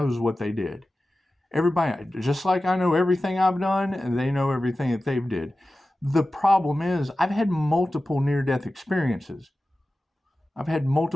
what they did. Everybody, just like I know everything I've done, and they know everything that they've did. The problem is I've had multiple near-death experiences.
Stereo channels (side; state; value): both; normal; correlation 0.95